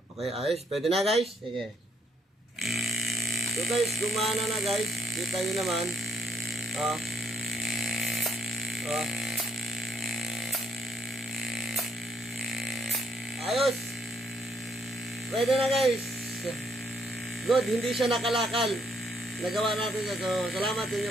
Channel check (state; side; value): normal; both; correlation 0.70